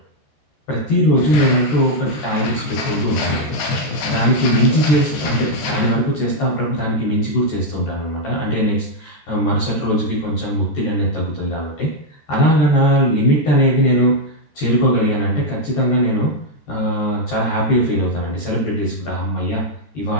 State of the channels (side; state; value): right; late; 13 ms